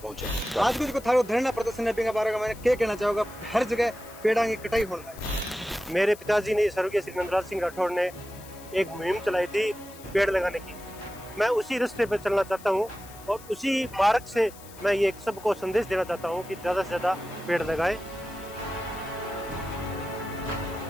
आज कुछ को थारो धरना प्रदर्शन के बारे में मैंने क्या कहना चाहूंगा, हर जगह पेड़ों की कटाई होना है। मेरे पिताजी ने स्वर्गीय श्री नंदराज सिंह राठौड़ ने एक मुहिम चलाई थी पेड़ लगाने की। मैं उसी रास्ते पर चलना चाहता हूँ और उसी मार्ग से मैं ये सबको संदेश देना चाहता हूँ कि ज्यादा से ज्यादा पेड़ लगाएं।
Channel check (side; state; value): left; noise; hiss, 20 dB below the sound